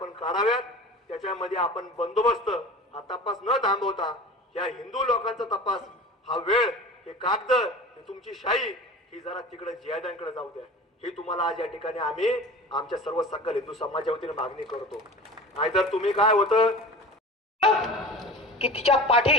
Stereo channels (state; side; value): normal; both; correlation 0.36